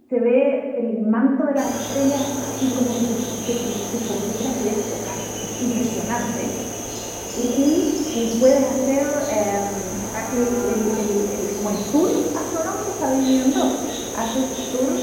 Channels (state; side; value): identical; both; correlation 1.00